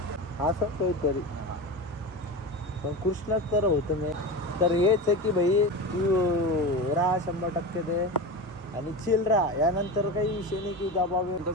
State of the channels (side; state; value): both; normal; correlation 0.25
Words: असं काहीतरी, पण कृष्णच तर होतं मी. तर हेच आहे की भाई, तू राहा 100% दे आणि चिल राहा. यानंतर काही विषय नाही की दबाव. तो